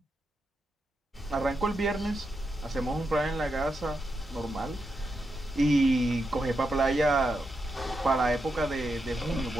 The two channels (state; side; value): normal; both; correlation 0.85